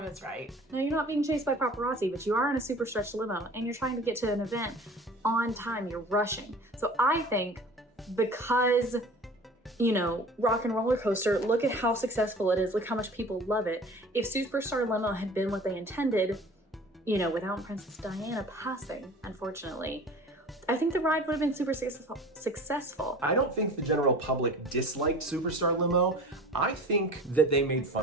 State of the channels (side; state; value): both; normal; correlation 0.42